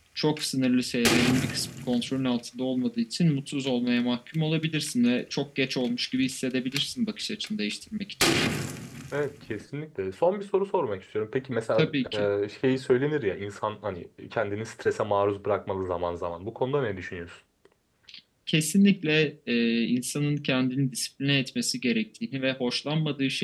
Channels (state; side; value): identical; both; correlation 1.00